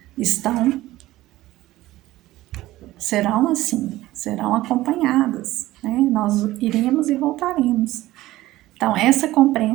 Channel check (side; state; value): left; quieter; 16.5 dB